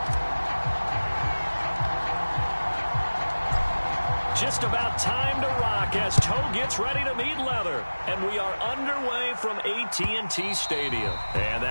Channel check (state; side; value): inverted; both; correlation -1.00